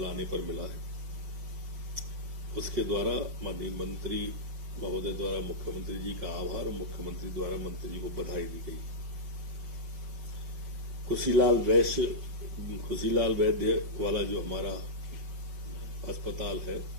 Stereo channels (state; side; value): late; left; 5.5 ms